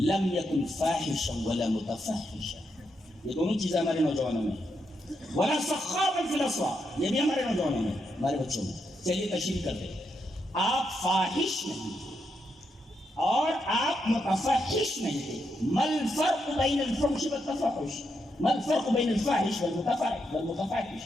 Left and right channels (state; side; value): normal; both; correlation 0.82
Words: لم یکن فاحشا ولا متفحشا، یہ دونوں چیزیں ہمارے نوجوانوں میں، ولا سخابا فی الاسواق، یہ بھی ہمارے نوجوانوں میں، ہمارے بچوں میں۔ چلیے تشریح کرتے ہیں، آپ فاحش نہیں تھے اور آپ متفحش نہیں تھے۔ ما الفرق بین الفحش والتفحش، ما الفرق بین الفاحش